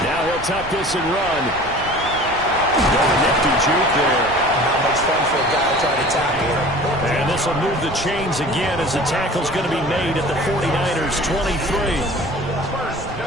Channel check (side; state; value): right; noise; rumble, 14 dB below the sound